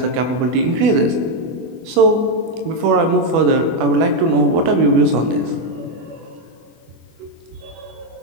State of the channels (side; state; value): left; late; 24 ms